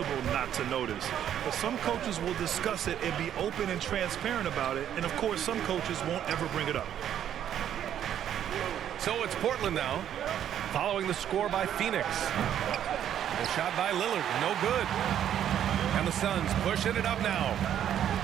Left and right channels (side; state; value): left; quieter; 10.2 dB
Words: not to notice. But some coaches will discuss it and be open and transparent about it. And, of course, some coaches won't ever bring it up. So it's Portland now, following the score by Phoenix. A shot by Lillard, no good. And the Suns pushing it up now.